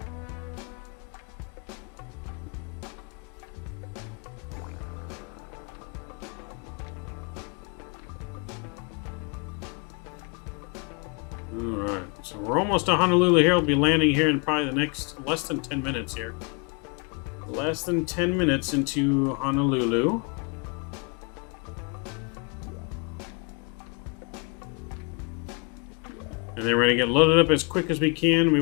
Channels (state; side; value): quieter; right; 34.1 dB